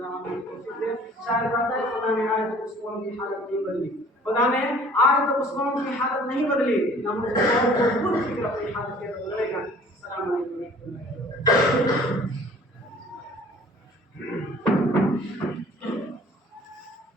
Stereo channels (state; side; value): normal; both; correlation 0.51